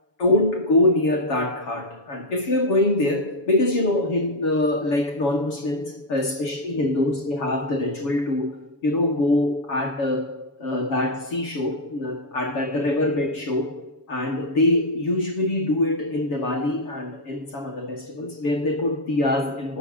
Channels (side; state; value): right; late; 7.1 ms